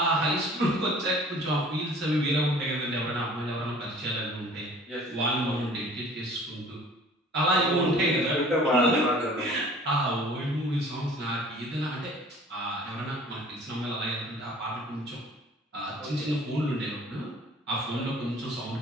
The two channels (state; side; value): normal; both; correlation 0.49